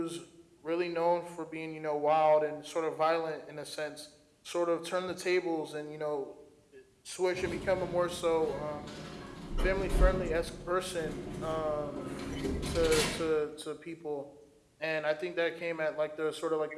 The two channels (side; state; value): both; identical; correlation 1.00